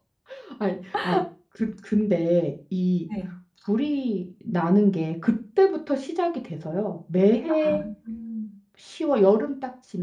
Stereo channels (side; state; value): both; identical; correlation 1.00